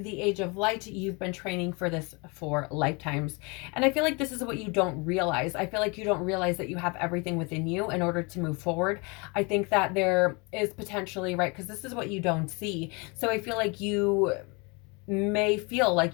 Age of Light. You've been training for this for lifetimes. And I feel like this is what you don't realize. I feel like you don't realize that you have everything within you in order to move forward. I think that there is potentially, right, because this is what you don't see. So I feel like you may feel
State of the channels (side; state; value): right; quieter; 29.6 dB